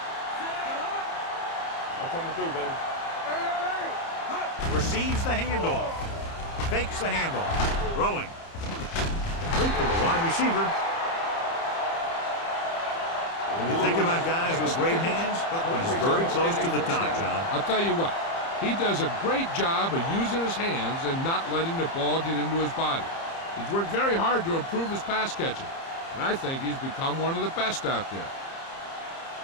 I'm coming through, baby. Receives the handoff. Fakes the handoff. Throwing. Complete to the wide receiver. When you think about guys with great hands, he's very close to the top, John. I'll tell you what, he does a great job of using his hands and not letting the ball get into his body. He's worked very hard to improve his pass catching, and I think he's become one of the best out there.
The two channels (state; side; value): late; right; 30 ms